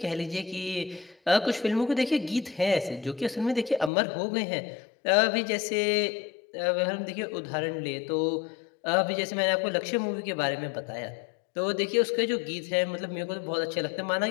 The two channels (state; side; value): drops out; right; at 3.9 s